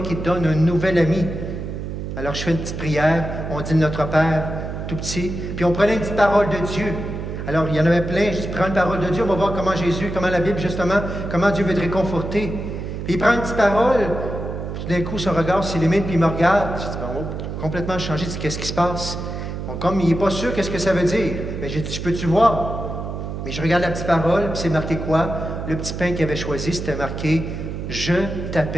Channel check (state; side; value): noise; right; hum, 6 dB below the sound